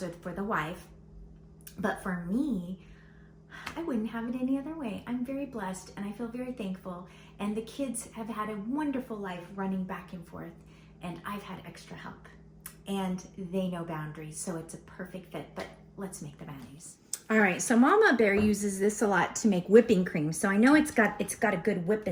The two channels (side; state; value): both; identical; correlation 1.00